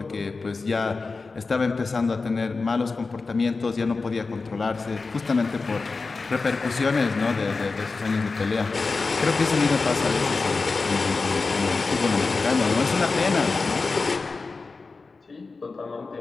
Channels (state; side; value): quieter; right; 4.1 dB